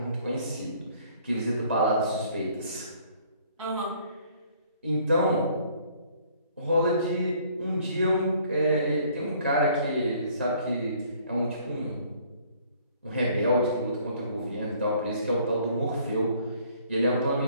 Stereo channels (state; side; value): inverted; both; correlation -0.59